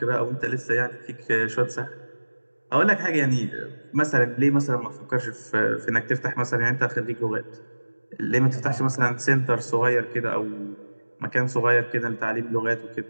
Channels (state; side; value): inverted; both; correlation -1.00